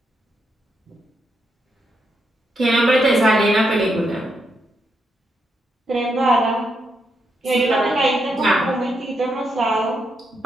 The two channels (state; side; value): normal; both; correlation 0.81